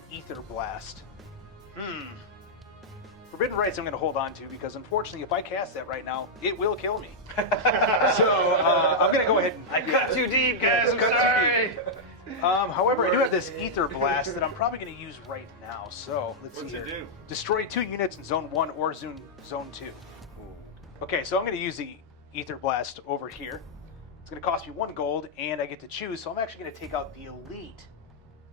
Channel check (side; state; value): both; normal; correlation -0.05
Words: Ether Blast. Forbidden Rites I'm going to hold on to because unfortunately if I cast that right now, it will kill me. So I'm going to go ahead and... I cut too deep, guys. I'm Cut too sorry. deep. However, I do have this Ether Blast that I'm probably going to use right now. So let's What's see it here. do? Destroy 2 units in Zone 1 or Zone 2. Okay, so I'm going to use the Ether Blast over here. It's going to cost me 1 gold, and I get to choose. So I'm actually going to take out the Elite